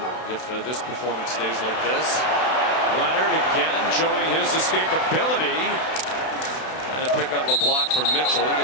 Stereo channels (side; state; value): right; late; 32 ms